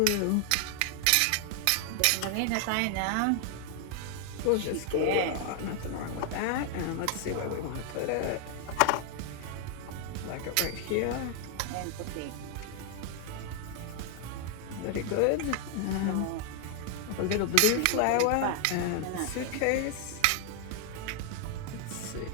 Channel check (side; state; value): both; different; correlation 0.00